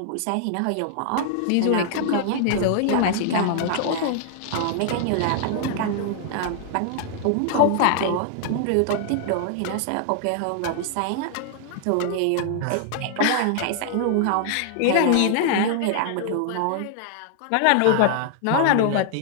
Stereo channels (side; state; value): both; different; correlation -0.01